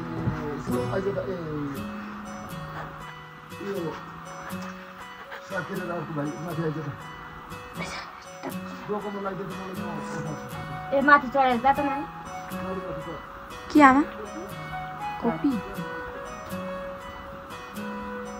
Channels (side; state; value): both; identical; correlation 1.00